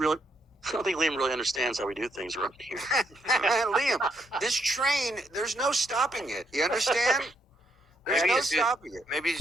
I don't think Liam really understands how we do things around here. Liam, this train, there's no stopping it. You understand? There's Maybe no it's just- stopping it. Maybe he's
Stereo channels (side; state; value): both; normal; correlation 0.75